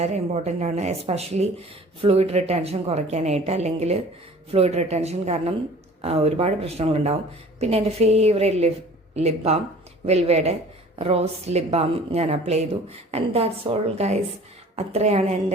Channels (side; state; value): both; normal; correlation 0.47